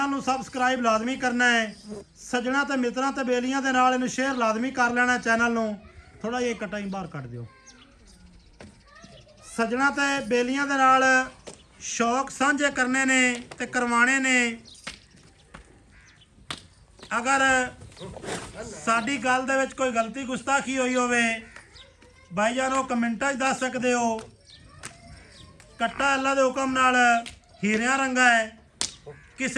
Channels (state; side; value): identical; both; correlation 1.00